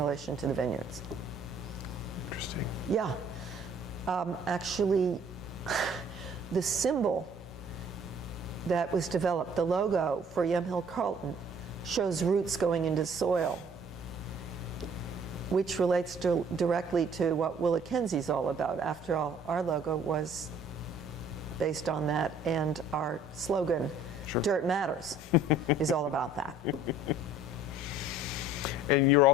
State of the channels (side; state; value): both; normal; correlation 0.55